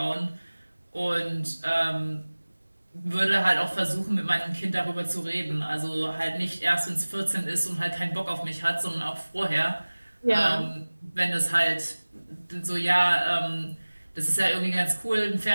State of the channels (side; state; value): both; inverted; correlation -1.00